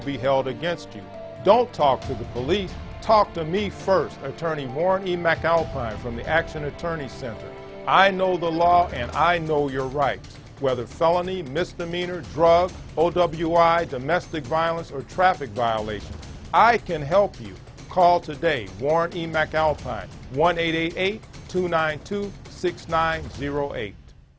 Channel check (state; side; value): identical; both; correlation 1.00